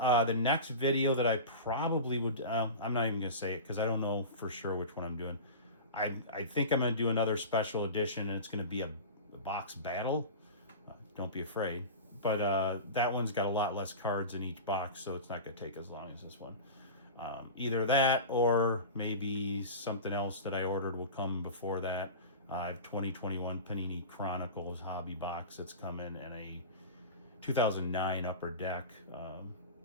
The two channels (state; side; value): inverted; both; correlation -0.31